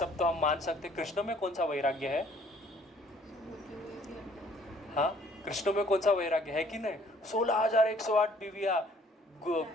तो हम मान सकते, कृष्ण में कौन सा वैराग्य है? हाँ, कृष्ण में कौन सा वैराग्य है कि नहीं? 16,108 बीवियाँ,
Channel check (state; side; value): normal; both; correlation 0.59